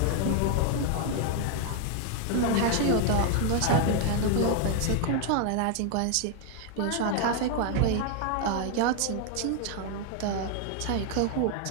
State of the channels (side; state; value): both; different; correlation 0.00